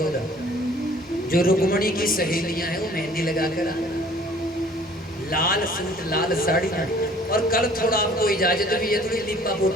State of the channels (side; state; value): both; normal; correlation 0.53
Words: रहा, जो रुक्मणी की सहेलियां हैं वो मेहंदी लगा कर आए, लाल सूट लाल साड़ियां। और कल थोड़ा आपको इजाजत भी है, थोड़ी लिपा